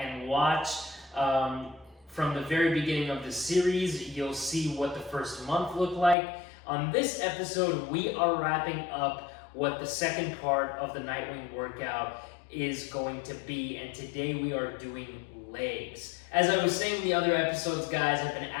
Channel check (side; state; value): right; drops out; at 6.2 s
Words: watch from the very beginning of the series. You'll see what the first month looked like. On this episode, we are wrapping up what the second part of the Nightwing workout is going to be, and today we are doing legs. As I was saying in the other episodes, guys, I've been